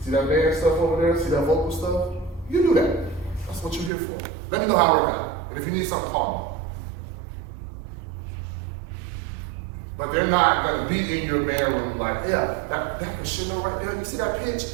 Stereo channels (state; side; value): drops out; left; at 3.9 s